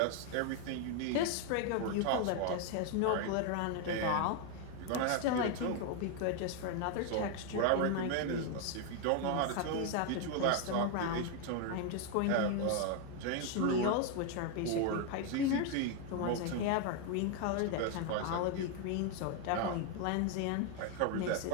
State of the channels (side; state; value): both; different; correlation 0.01